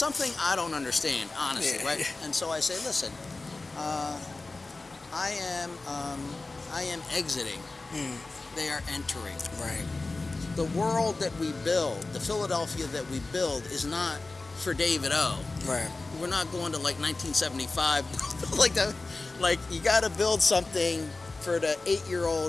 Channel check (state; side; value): quieter; right; 3.4 dB